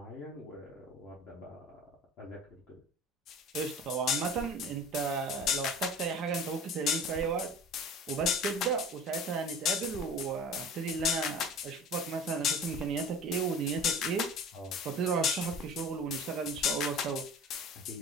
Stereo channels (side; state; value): both; normal; correlation 0.40